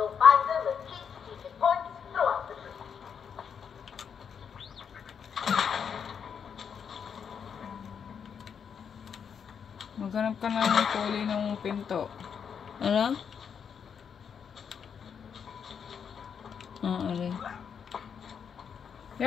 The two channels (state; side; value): quieter; right; 7.2 dB